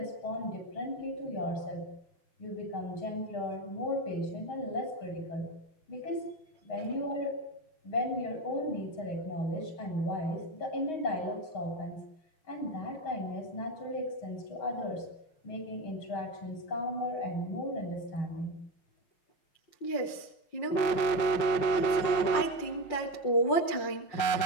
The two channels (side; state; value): right; late; 5.5 ms